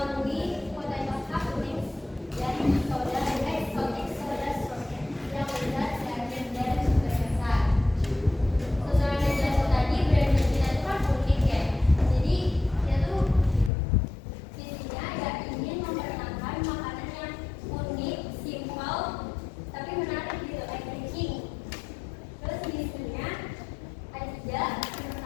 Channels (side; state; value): right; drops out; at 13.7 s